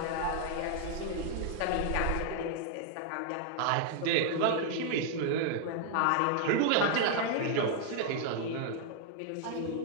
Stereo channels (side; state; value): both; different; correlation -0.01